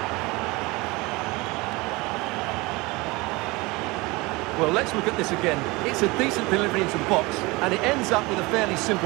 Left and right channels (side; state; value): left; quieter; 23.6 dB